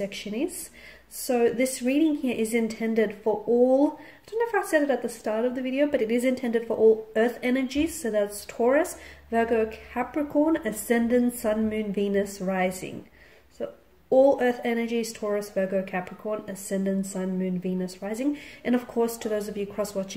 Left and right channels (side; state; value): both; identical; correlation 1.00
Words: is. So this reading here is intended for all, I don't know if I said it at the start of the video, but it is intended for all earth energies. So that's Taurus, Virgo, Capricorn, Ascendant, Sun, Moon, Venus, Rising. All earth energies, Taurus, Virgo, Capricorn, Ascendant, Sun, Moon, Venus, Rising. And of course, to those of you